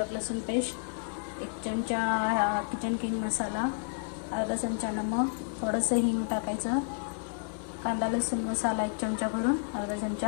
लसूण पेस्ट, 1 चमचा किचन किंग मसाला, अर्धा चमचा नमक, थोडंसं हिंग टाकायचं, कांदा लसूण मसाला 1 चमचा भरून, अर्धा चमचा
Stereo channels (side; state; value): right; silent; digital silence